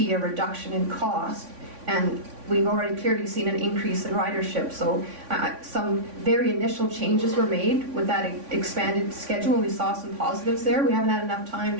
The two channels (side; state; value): left; late; 3.5 ms